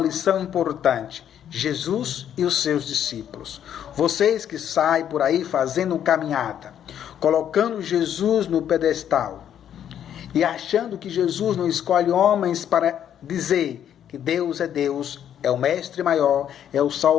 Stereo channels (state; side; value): quieter; right; 9.7 dB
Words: importante. Jesus e os seus discípulos. Vocês que saem por aí fazendo caminhada, colocando Jesus no pedestal e achando que Jesus não escolhe homens para dizer que Deus, é o mestre maior, é o